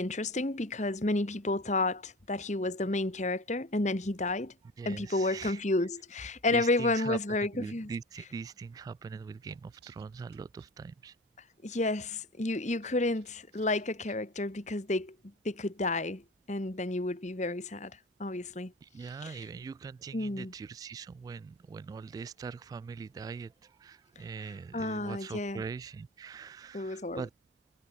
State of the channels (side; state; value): both; normal; correlation 0.34